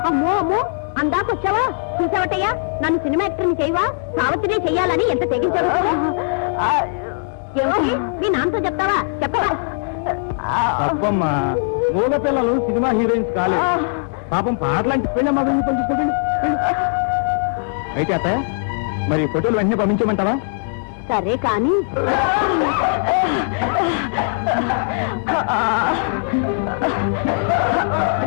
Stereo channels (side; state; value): right; silent; digital silence